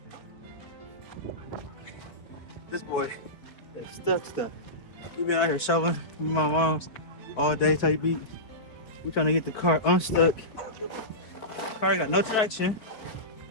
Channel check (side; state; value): right; late; 4.6 ms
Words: This boy is stuck. We've been out here shoveling with my mom's all day. Type beat. We're trying to get the car unstuck. Car got no traction.